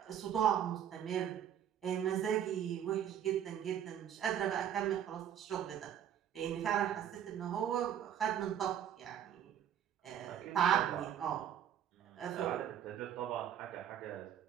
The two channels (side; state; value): left; quieter; 9.8 dB